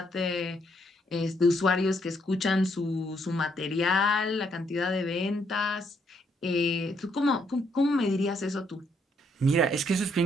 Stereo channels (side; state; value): both; normal; correlation 0.73